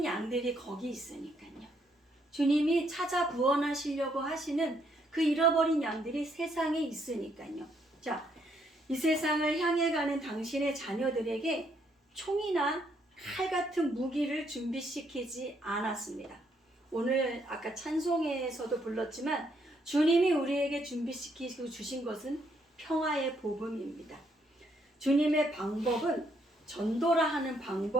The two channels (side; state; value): both; normal; correlation 0.72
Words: 양들이 거기 있으니까요. 주님이 찾아 구원하시려고 하시는 그 잃어버린 양들이 세상에 있으니까요. 자, 이 세상을 향해 가는 당신의 자녀들에게 총이나 칼 같은 무기를 준비시키지 않았습니다. 오늘 아까 찬송에서도 불렀지만 주님이 우리에게 준비시키고 주신 것은 평화의 복음입니다. 주님의 방법은 전도라 하는